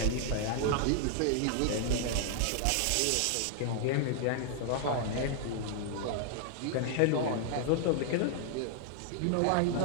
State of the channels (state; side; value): different; both; correlation 0.00